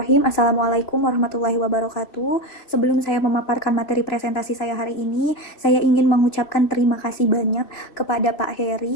Assalamualaikum warahmatullahi wabarakatuh. Sebelum saya memaparkan materi presentasi saya hari ini, saya ingin mengucapkan terima kasih banyak kepada Pak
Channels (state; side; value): late; right; 3.2 ms